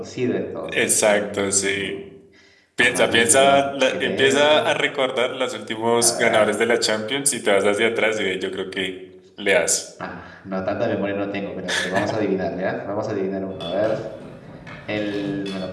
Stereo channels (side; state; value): both; identical; correlation 1.00